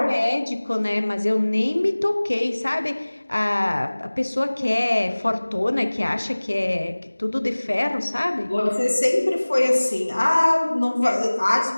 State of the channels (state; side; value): inverted; both; correlation -1.00